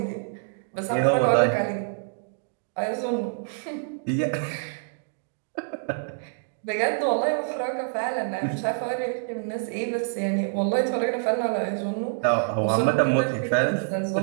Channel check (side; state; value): left; silent; digital silence